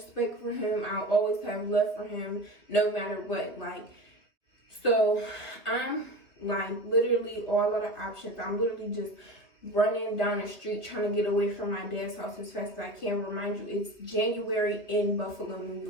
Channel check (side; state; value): right; late; 2.8 ms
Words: for him. I'll always have love for him, no matter what. Like, so I'm like literally all out of options. I'm literally just running down the street trying to get away from my dad's house as fast as I can. Remind you, it's January in Buffalo, New